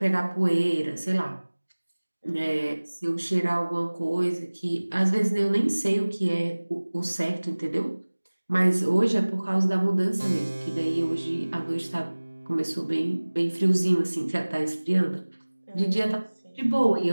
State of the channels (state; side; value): inverted; both; correlation -1.00